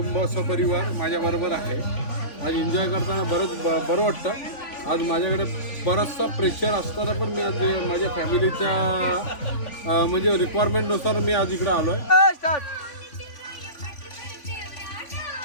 सपरिवार माझ्याबरोबर आहे. आज एन्जॉय करताना बरं वाटतं. आज माझ्याकडे बराचसा प्रेशर असताना पण मी आज माझ्या फॅमिलीच्या म्हणजे रिक्वायरमेंटनुसार मी आज इकडे आलो आहे.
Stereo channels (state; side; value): late; right; 3.5 ms